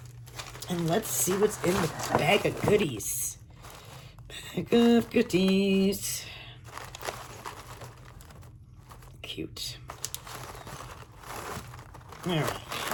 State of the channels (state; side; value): identical; both; correlation 1.00